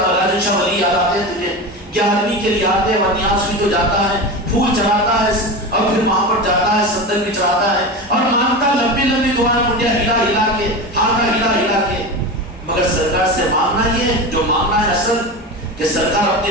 شاہ ولی یاد آتے ہیں تجھے، 11ویں کے لیے آتے ہیں، ورنیاس بھی تو جاتا ہے، پھول چڑھاتا ہے اور پھر وہاں پر جاتا ہے، صندل بھی چڑھاتا ہے اور مانگتا لمبی لمبی دعائیں، منڈیا ہلا ہلا کے، ہاتھا ہلا ہلا کے. مگر سرکار سے مانگنا یہ جو مانگنا ہے اصل کہ سرکار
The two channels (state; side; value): normal; both; correlation 0.24